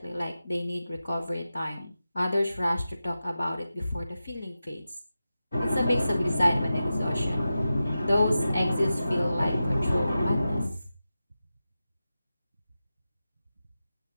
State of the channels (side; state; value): both; inverted; correlation -0.93